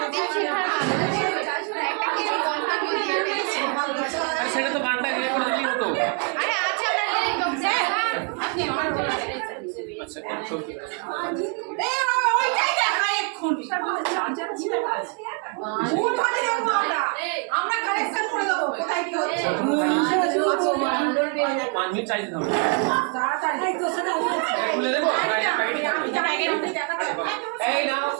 দীপশিখার একটা কিছু মন্তব্য দিয়ে ফেলেছি। আরে সেটা তো গানটা ইয়ে করে দিলেই হতো। আরে আছে আপনার লিরিক বক্সে। আপনি অন করে আচ্ছা কন্ট্রোল ওইটাই দেখা এক্ষুনি ভুল ধরে দেবো আমরা কালেকশন করে দেবো কোথায় কি হচ্ছে 5 মিনিট চাই দিতাম তাড়াতাড়ি তো সেটা খুলে দেবো এই নাও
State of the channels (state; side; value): quieter; left; 36.5 dB